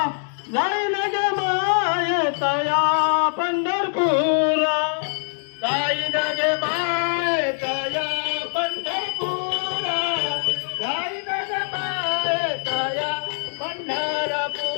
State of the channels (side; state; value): right; silent; digital silence